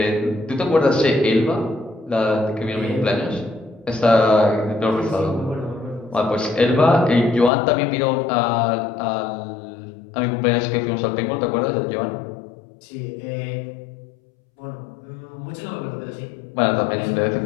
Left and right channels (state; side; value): drops out; right; at 7.5 s